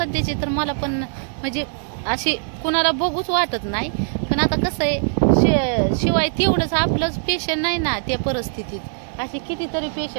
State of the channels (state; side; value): silent; left; 65 dB below the other